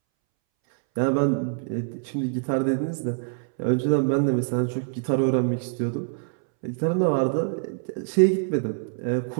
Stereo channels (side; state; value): left; silent; 62 dB below the other